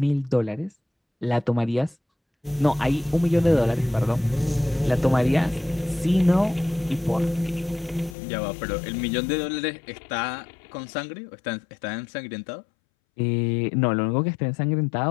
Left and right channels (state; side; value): drops out; right; at 8.2 s